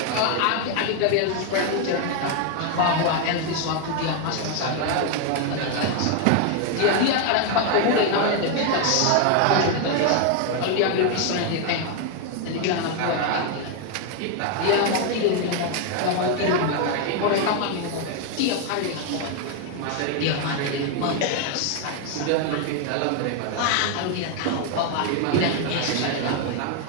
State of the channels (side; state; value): both; different; correlation 0.01